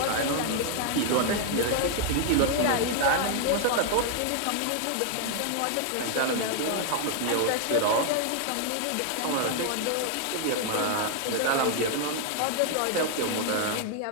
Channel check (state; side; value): different; both; correlation 0.00